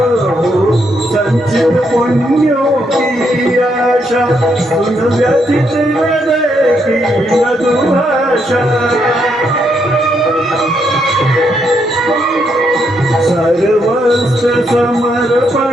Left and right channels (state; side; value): normal; both; correlation 0.77